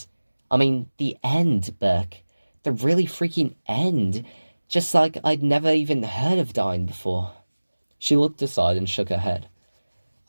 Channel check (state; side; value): inverted; both; correlation -1.00